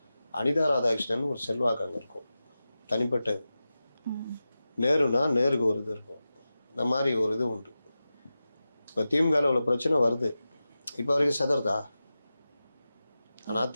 அனிதா ராதாகிருஷ்ணன் ஒரு செல்வாக்கு அங்கே இருக்கும், தனிப்பட்டது. நேருனா நேருக்கு ஒரு இது இருக்கும், இந்த மாதிரி ஒரு இது உண்டு. இப்போ திமுகவில் உள்ள பிரச்சனை வருது, இப்போ வரைக்கும் செதறதா? ஆனால்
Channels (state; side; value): inverted; both; correlation -0.94